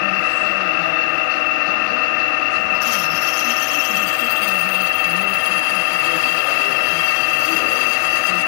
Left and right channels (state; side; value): silent; right; digital silence